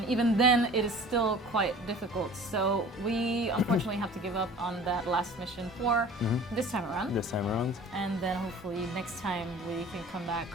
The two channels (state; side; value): normal; both; correlation 0.44